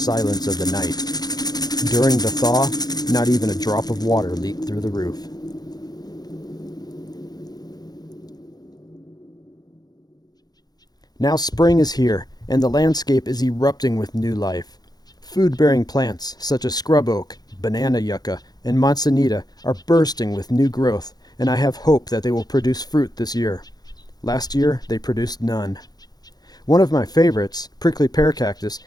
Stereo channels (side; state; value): right; late; 0.19 ms